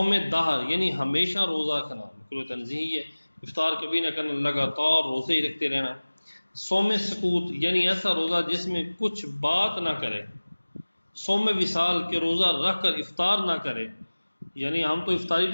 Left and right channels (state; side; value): inverted; both; correlation -1.00